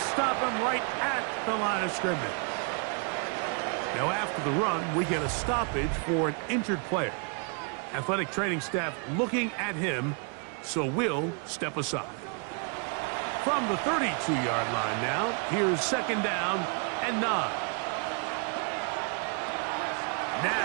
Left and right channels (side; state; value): left; quieter; 37.6 dB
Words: stop him right at the line of scrimmage. Now after the run, we get a stoppage for an injured player. Athletic training staff looking at him, so we'll step aside. From the 32-yard line now, here's 2nd down and 9.